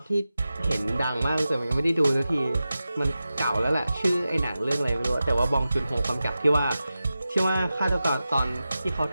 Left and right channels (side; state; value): both; inverted; correlation -0.93